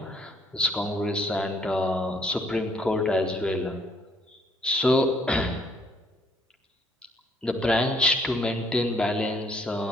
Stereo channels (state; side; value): normal; both; correlation 0.65